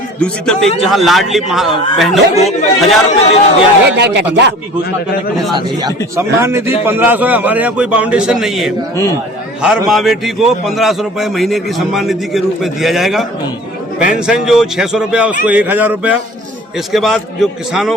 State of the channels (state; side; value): normal; both; correlation 0.44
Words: दूसरी तरफ एक जहाँ लाडली बहनों को 1000 रुपए दे दिया की घोषणा करने। सम्मान निधि 1500 है, हमारे यहाँ कोई बाउंडेशन नहीं है। हर माँ बेटी को 1500 रुपए महीने की सम्मान निधि के रूप में दिया जाएगा। पेंशन जो 600 रुपया उसको 1000 रुपया। इसके बाद जो